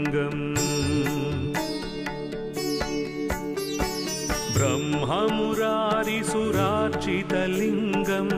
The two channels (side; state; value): both; identical; correlation 1.00